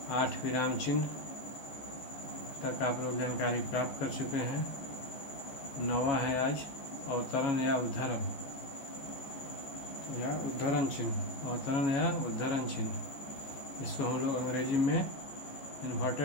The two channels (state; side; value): late; right; 14 ms